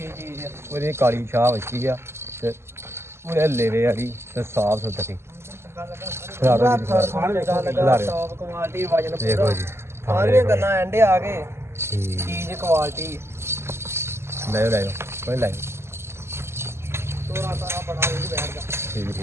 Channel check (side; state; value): left; late; 0.12 ms